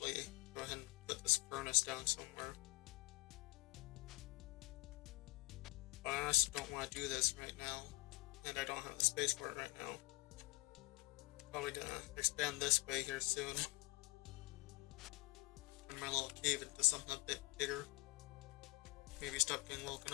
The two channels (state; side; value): quieter; right; 23.2 dB